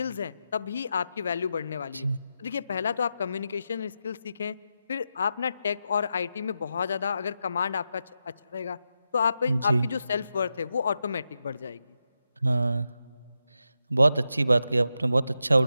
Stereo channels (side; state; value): both; inverted; correlation -0.88